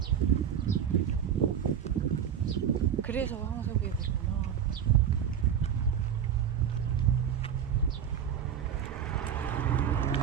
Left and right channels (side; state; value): left; quieter; 8.7 dB